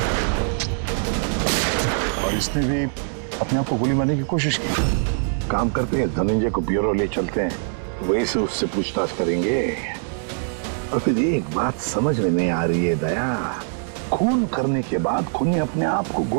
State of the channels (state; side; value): silent; left; 64 dB below the other